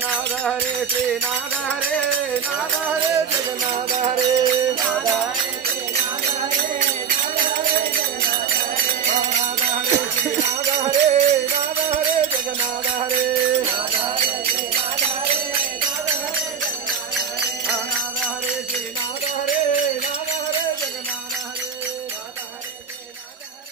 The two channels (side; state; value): left; quieter; 7.2 dB